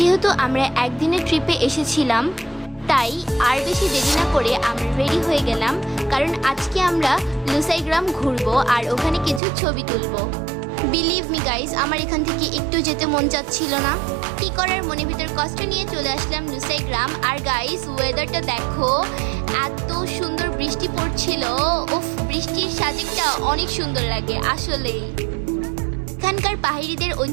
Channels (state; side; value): drops out; left; at 9.4 s